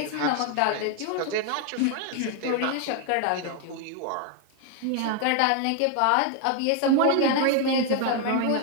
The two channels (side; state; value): both; different; correlation 0.00